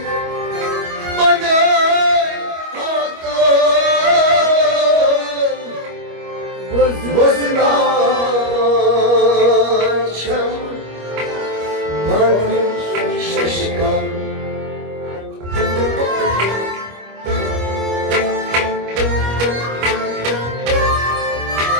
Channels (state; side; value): late; left; 25 ms